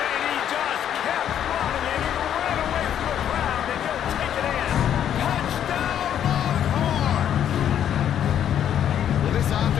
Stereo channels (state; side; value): quieter; right; 9.9 dB